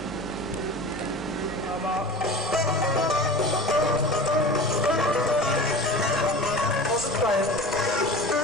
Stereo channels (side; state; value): both; normal; correlation 0.35